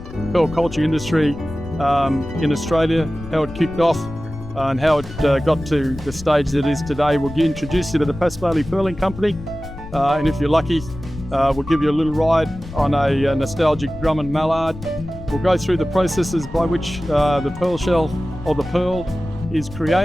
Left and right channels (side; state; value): left; noise; rumble, 13 dB below the sound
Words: pearl culture industry in Australia, how it kicked off and how it got to the stage that it is today. We'll introduce you to the Pasquale Pearling Company, and if you're lucky, we'll give you a little ride on a nostalgic drum and mallard. We'll go through the processes by which the pearl shell or the pearl is